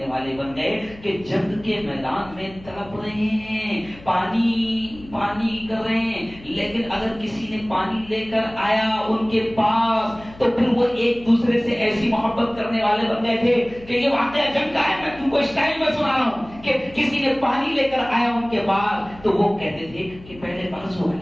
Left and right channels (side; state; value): left; noise; hum, 20 dB below the sound